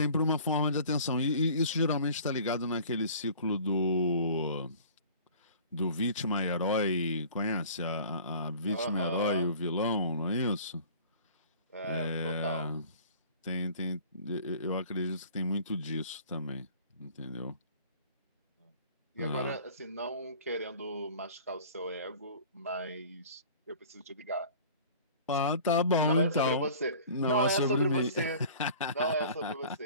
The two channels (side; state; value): both; inverted; correlation -0.46